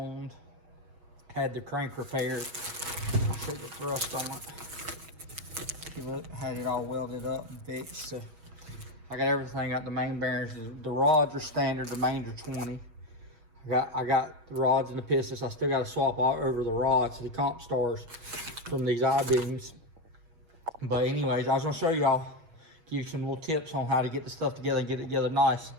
had the crank repaired. I'll show you the thrust on it. See, look, had it all welded up and fixed. So I got everything. Got the main bearings. The rods are standard. The mains are 20. I got the rods and the pistons. I still got to swap all over the rods, the comp stars from these I-beams. But anyways, I was gonna show y'all, give you some little tips on how to get the stuff together and get it together nice.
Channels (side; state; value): left; late; 6.2 ms